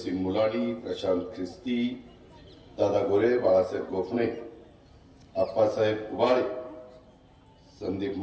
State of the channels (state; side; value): identical; both; correlation 1.00